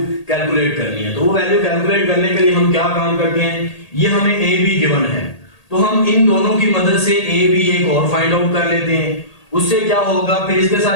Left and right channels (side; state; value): right; late; 1.8 ms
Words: कैलकुलेट करनी है। तो वो वैल्यू कैलकुलेट करने के लिए हम क्या काम करते हैं, ये हमें ए बी गिवन है तो हम इन दोनों की मदद से ए बी एक और फाइंड आउट कर लेते हैं। उससे क्या होगा, फिर इसके